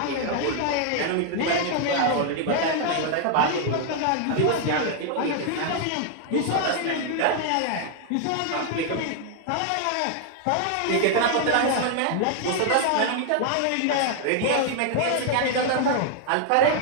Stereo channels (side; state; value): both; different; correlation 0.00